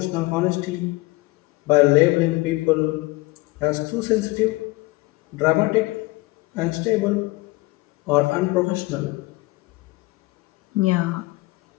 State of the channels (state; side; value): quieter; right; 22.2 dB